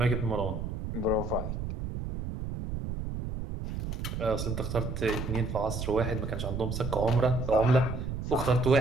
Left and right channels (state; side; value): noise; right; rumble, 5 dB below the sound